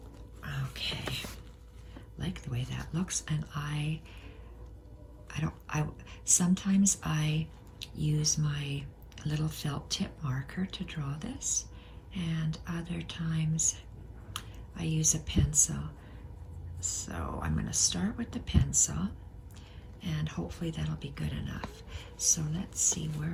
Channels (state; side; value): identical; both; correlation 1.00